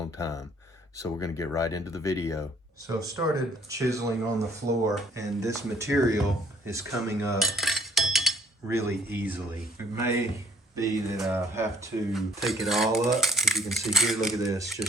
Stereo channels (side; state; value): both; normal; correlation 0.60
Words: time. So we're going to get right into the video. So I've started chiseling on the floor and this material is coming up really easily. It may be that I have to take it all up. As you can see here, look at this,